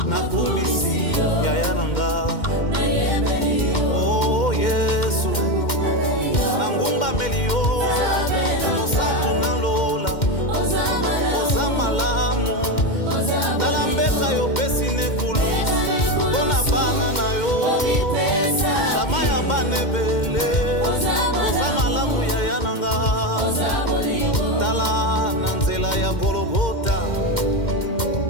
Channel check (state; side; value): late; right; 2.1 ms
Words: nakumisi yaya na nga oh Yesu nangumbameli yo mosantu nalola oza malamu tala mbeka yo pesi nekulu mpona bana na yo shama ya bana ebele oza malamu yaya na nga tala na nzela ya Golgota